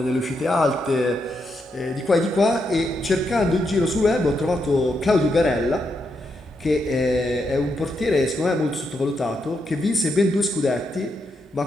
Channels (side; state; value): both; normal; correlation 0.82